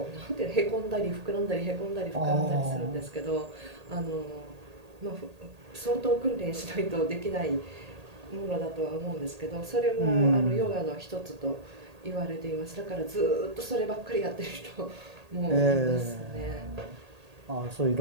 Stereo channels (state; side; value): late; left; 1.8 ms